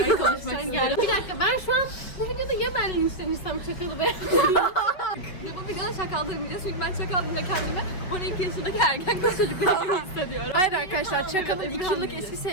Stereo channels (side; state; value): right; late; 5.2 ms